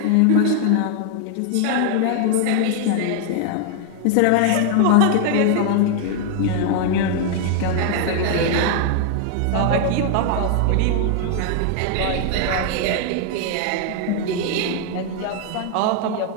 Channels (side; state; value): both; different; correlation 0.00